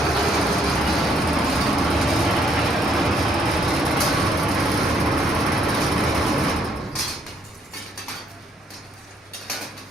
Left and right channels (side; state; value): both; normal; correlation 0.69